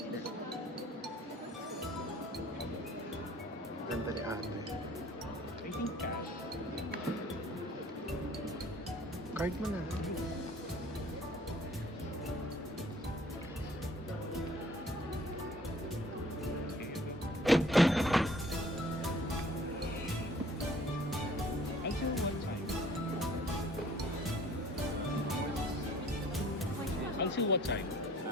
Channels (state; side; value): normal; both; correlation 0.55